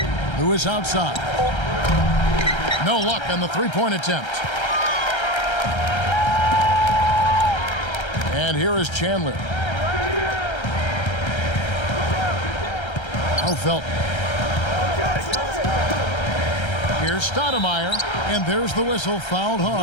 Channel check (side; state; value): right; late; 1.3 ms